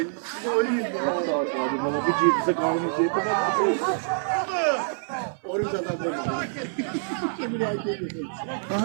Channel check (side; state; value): left; silent; 61 dB below the other